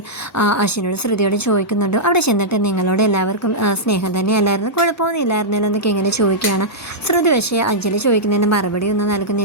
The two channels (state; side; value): normal; both; correlation -0.10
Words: അശ്വിനോട് ശ്രുതിയോട് ചോദിക്കുന്നുണ്ട്, അവിടെ ചെന്നിട്ട് നിങ്ങളോട് എല്ലാവർക്കും സ്നേഹം തന്നെയല്ലായിരുന്നു, കുഴപ്പമൊന്നും ഇല്ലായിരുന്നല്ലോ എന്നൊക്കെ ഇങ്ങനെ ചോദിക്കുകയാണ്. ശ്രുതി പക്ഷേ അഞ്ജലി ചോദിക്കുന്നതിന് മറുപടി ഒന്നും